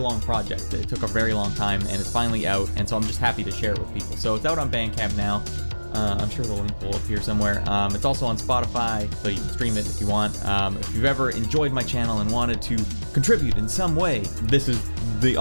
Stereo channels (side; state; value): both; inverted; correlation -1.00